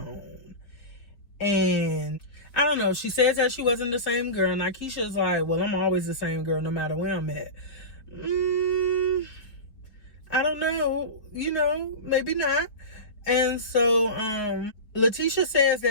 And I don't know, she says that she wasn't the same girl, and Akeisha's like, well, I'm always the same girl no matter where I'm at. I don't know, maybe not. And so Letitia says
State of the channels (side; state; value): right; late; 4.6 ms